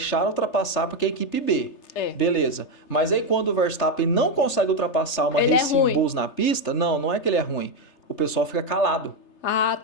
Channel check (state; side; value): late; right; 3.3 ms